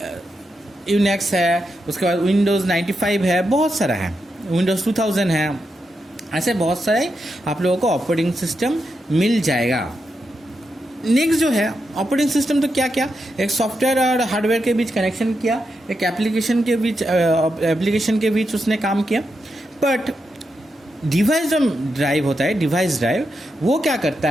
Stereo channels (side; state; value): both; normal; correlation 0.85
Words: है, उसके बाद विंडोज़ 95 है, बहुत सारा है, विंडोज़ 2000 है, ऐसे बहुत सारे आप लोगों को ऑपरेटिंग सिस्टम मिल जाएगा। नेक्स्ट जो है ऑपरेटिंग सिस्टम, तो क्या क्या, एक सॉफ्टवेयर और हार्डवेयर के बीच कनेक्शन किया, एक एप्लीकेशन के बीच उसने काम किया। बट डिवाइस जो ड्राइव होता है, डिवाइस ड्राइव, वो क्या करता